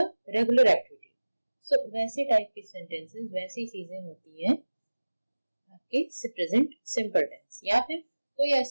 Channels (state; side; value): inverted; both; correlation -1.00